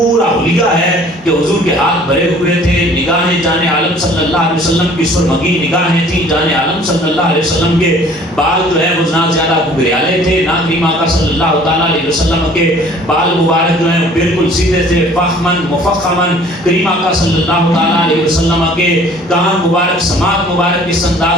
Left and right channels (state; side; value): normal; both; correlation 0.53